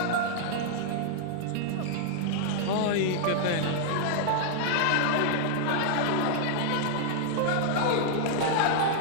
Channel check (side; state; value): both; different; correlation -0.01